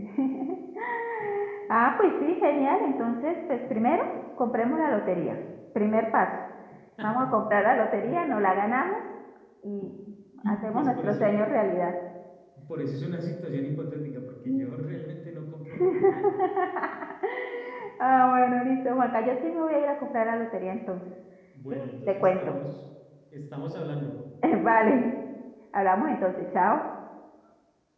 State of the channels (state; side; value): identical; both; correlation 1.00